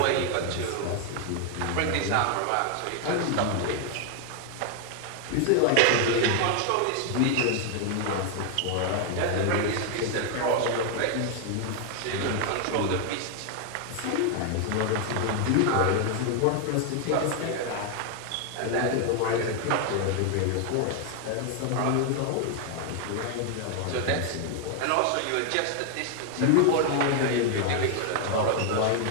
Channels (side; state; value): both; different; correlation 0.00